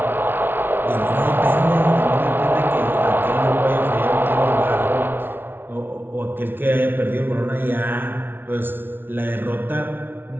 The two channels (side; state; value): left; late; 0.10 ms